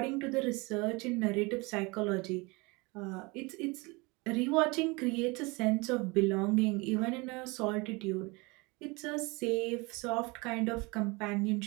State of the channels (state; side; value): quieter; left; 26.2 dB